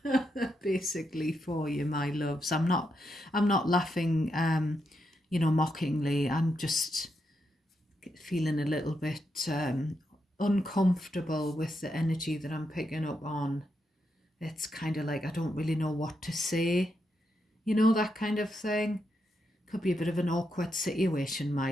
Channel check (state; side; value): normal; both; correlation 0.82